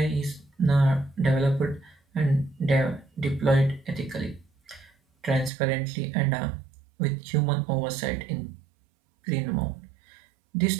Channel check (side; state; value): left; drops out; at 5.5 s